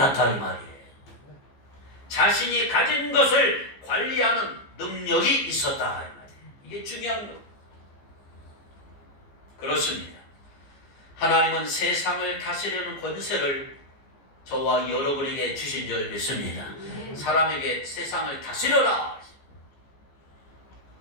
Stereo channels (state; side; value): late; right; 14 ms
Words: 이 말이에요. 자신이 가진 것을 관리하는 능력이 있었다 이 말이에요. 이게 중요한 거예요. 그렇습니다. 하나님은 세상을 다스리는 권세를 저와 여러분에게 주신 줄 믿습니다. 사람에게 세상을 다스려라.